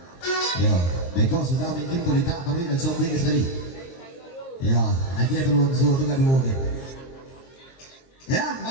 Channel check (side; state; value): right; late; 23 ms